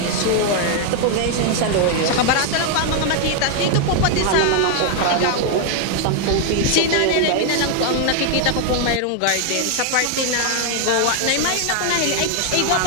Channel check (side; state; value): both; different; correlation 0.00